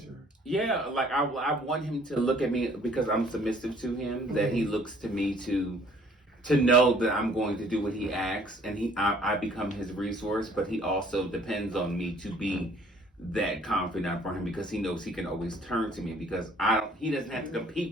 Yeah, like I want him to look at me because I'm submissive to him, that he looks to me to know that I'm going to do what he asks, and I become his resource, but he also depends on me to be that confidant for him because he knows he can always turn to me because he doesn't have to compete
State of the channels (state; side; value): normal; both; correlation 0.57